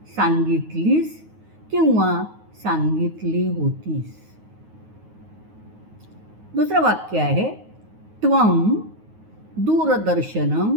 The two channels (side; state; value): left; late; 9.4 ms